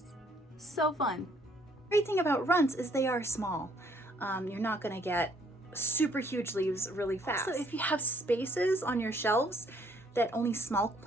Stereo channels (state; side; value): normal; both; correlation 0.65